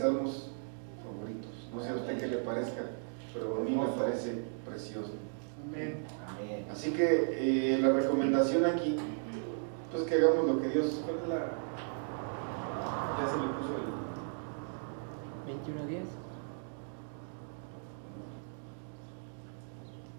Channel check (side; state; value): left; silent; digital silence